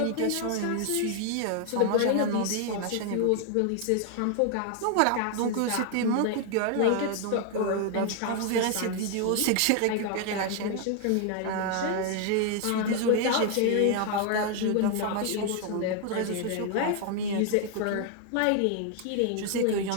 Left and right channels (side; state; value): both; different; correlation 0.00